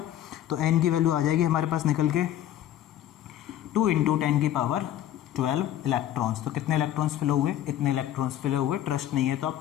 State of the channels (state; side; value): quieter; right; 11.8 dB